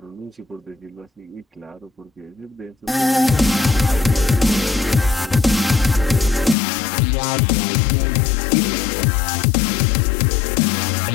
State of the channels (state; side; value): drops out; right; at 6.6 s